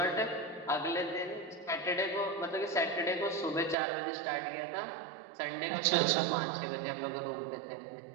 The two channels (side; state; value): left; drops out; at 3.8 s